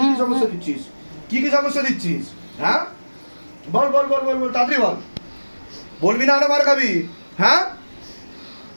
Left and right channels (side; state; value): both; inverted; correlation -1.00